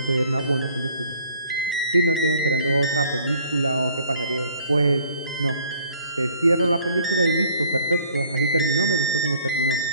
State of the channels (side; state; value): both; inverted; correlation -0.58